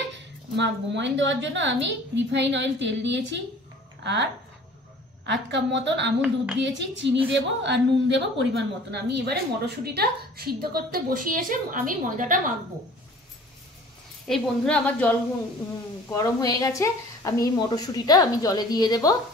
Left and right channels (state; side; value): normal; both; correlation 0.48